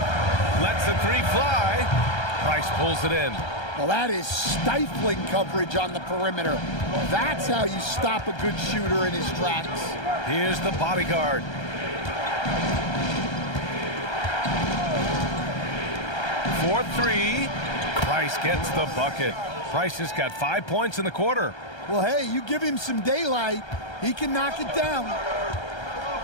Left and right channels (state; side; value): late; right; 1.3 ms